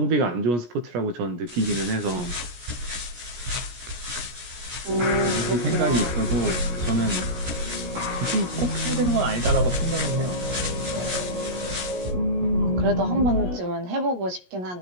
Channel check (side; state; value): left; late; 17 ms